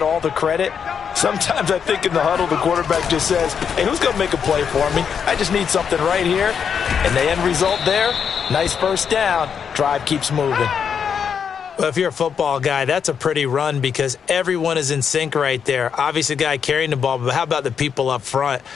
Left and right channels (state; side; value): quieter; right; 7.1 dB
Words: all the credit. Sometimes I think in the huddle, the quarterback just says, hey, who's going to make a play for me? I just need something right here. And the end result there, nice first down. Drive keeps moving. Well, if you're a football guy, that's a pretty run because everyone is in sync right there. Obviously, the guy carrying the ball, but how about the people up front?